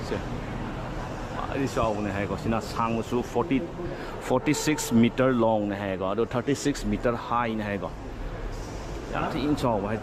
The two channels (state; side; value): identical; both; correlation 1.00